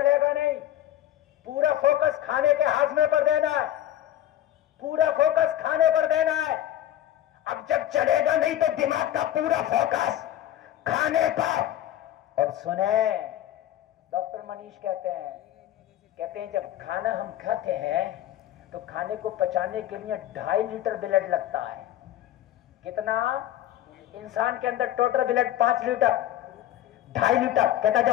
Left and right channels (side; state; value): right; quieter; 12.6 dB